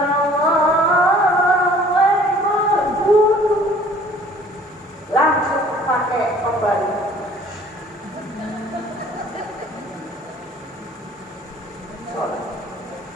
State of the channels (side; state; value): both; normal; correlation 0.53